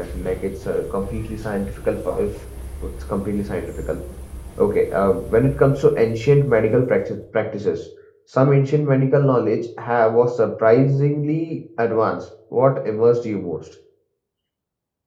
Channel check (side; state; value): both; identical; correlation 1.00